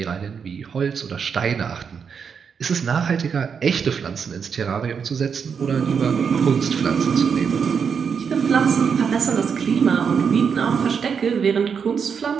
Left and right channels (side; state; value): left; quieter; 6.5 dB